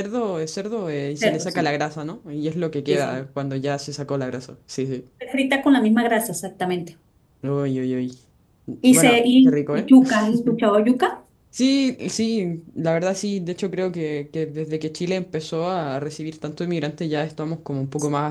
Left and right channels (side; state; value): both; identical; correlation 1.00